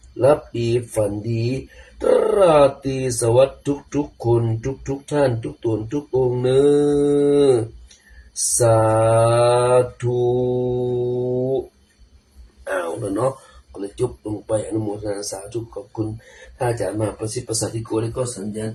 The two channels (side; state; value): both; identical; correlation 1.00